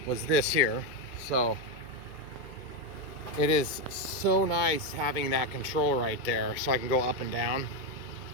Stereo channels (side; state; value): right; late; 2.2 ms